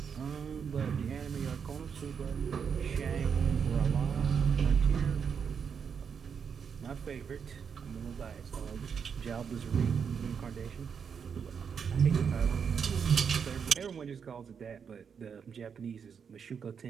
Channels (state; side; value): quieter; left; 6.7 dB